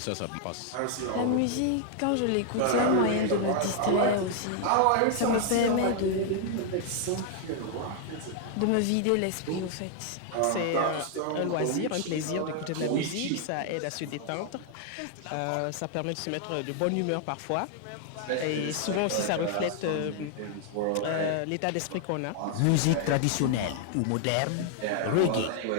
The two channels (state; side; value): different; both; correlation 0.00